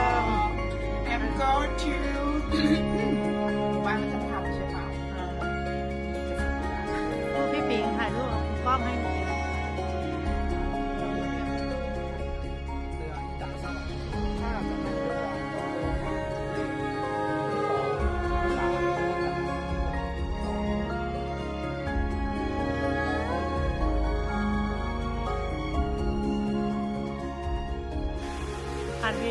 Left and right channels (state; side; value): identical; both; correlation 1.00